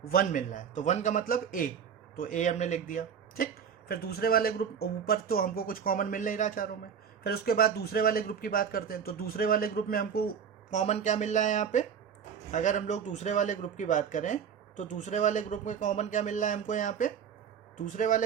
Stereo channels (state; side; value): quieter; left; 7.5 dB